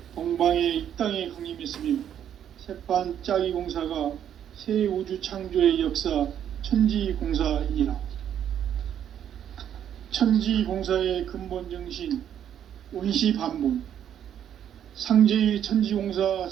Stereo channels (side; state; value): left; quieter; 9.7 dB